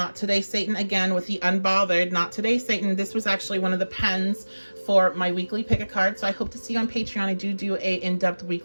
Today Satan again with the Unbothered. Not Today Satan. This was actually one of the pens for my weekly pick a card. So I hope to see you on Patreon. I do a in-depth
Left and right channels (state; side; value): inverted; both; correlation -1.00